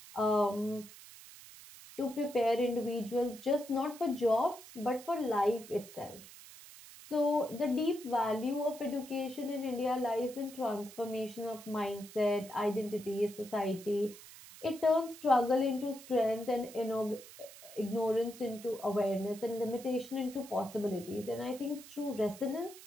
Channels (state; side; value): noise; right; hiss, 17 dB below the sound